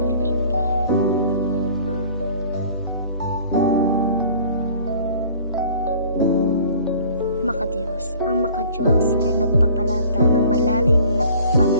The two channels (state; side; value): inverted; both; correlation -0.50